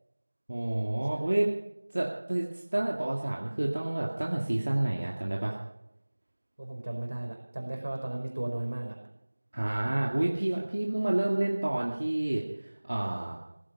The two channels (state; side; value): inverted; both; correlation -1.00